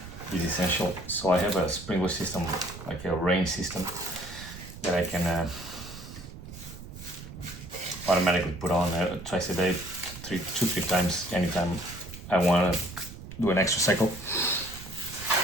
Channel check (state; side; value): noise; right; rumble, 13 dB below the sound